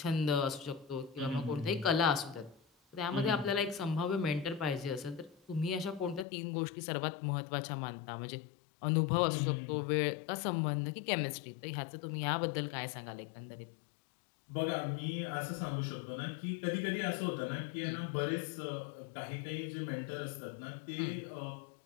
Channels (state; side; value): drops out; right; at 6.2 s